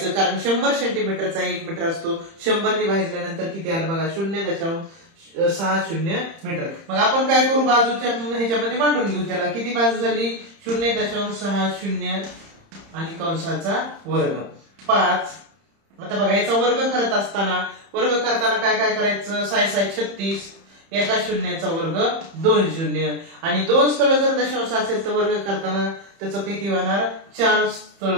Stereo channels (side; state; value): left; late; 30 ms